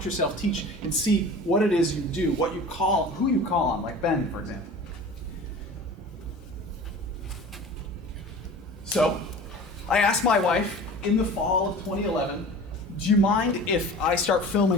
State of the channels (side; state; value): both; normal; correlation 0.39